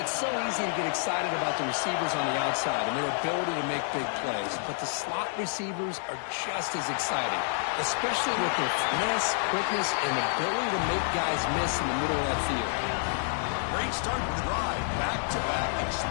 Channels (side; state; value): right; silent; 59 dB below the other